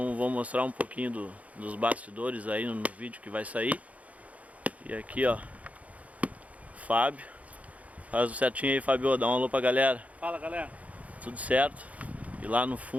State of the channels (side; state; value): left; late; 0.068 ms